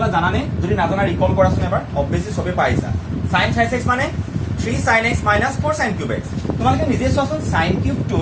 জানানে যদি নাজানা ৰিকল কৰাচোন এবাৰ অবভিয়াসলি সবে পাইছা sin twice x মানে 3 sin x minus 4 sin cube x তোমালোকে নিজে চোৱাচোন sin cube টু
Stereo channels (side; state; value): both; identical; correlation 1.00